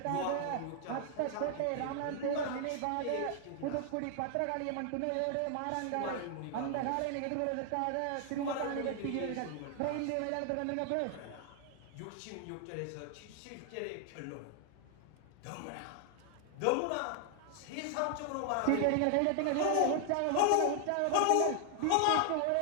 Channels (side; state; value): both; different; correlation 0.00